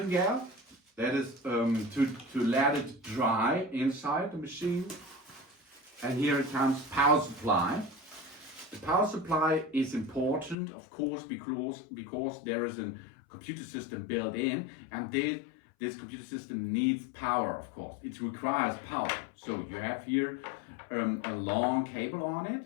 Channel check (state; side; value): drops out; right; at 10.6 s